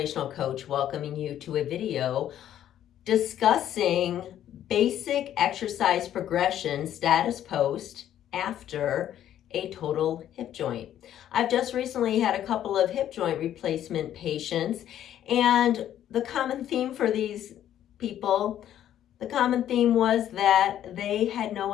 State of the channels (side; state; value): right; quieter; 11.2 dB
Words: Coach, welcoming you to a video discussing basic exercise progression status post after a total hip joint. I've just recently had a couple of hip joint replacement patients, and the common theme for these people, the common theme was that they had no